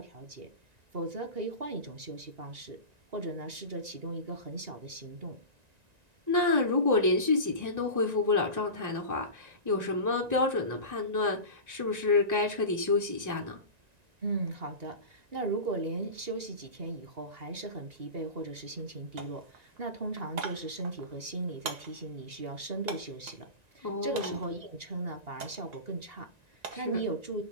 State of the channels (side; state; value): left; late; 1.9 ms